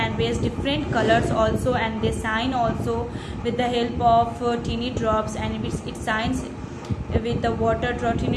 raise different colors also, and they shine also with the help of teeny drops, and it shines with the water,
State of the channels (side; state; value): both; identical; correlation 1.00